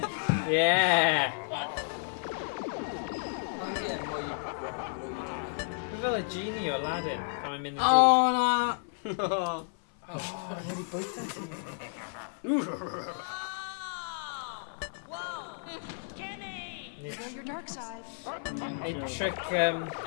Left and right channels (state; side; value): silent; right; 55 dB below the other